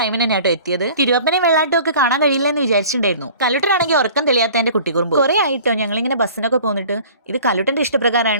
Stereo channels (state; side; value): inverted; both; correlation -0.46